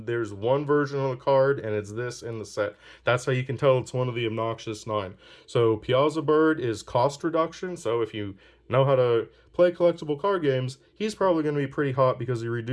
there's one version of the card, and it's this in the set. That's how you can tell it's one of the obnoxious 9. So Piazza Bird is cost reduction. So if you know how to play collectible card games, he's probably going to be pretty hot because he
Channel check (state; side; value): identical; both; correlation 1.00